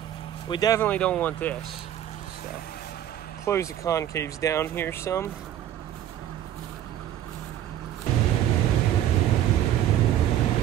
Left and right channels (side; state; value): left; quieter; 11.4 dB